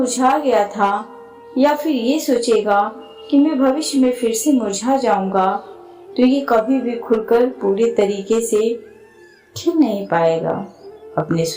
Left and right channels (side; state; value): both; identical; correlation 1.00